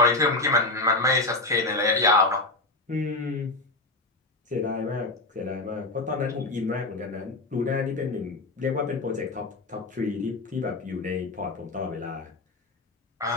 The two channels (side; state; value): right; quieter; 3.1 dB